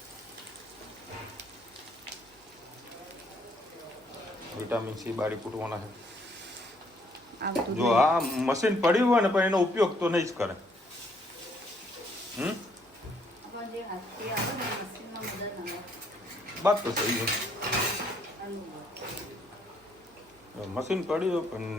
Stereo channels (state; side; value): normal; both; correlation 0.68